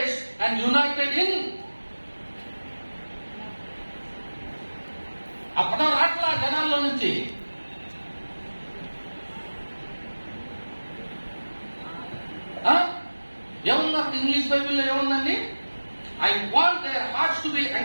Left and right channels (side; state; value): both; inverted; correlation -1.00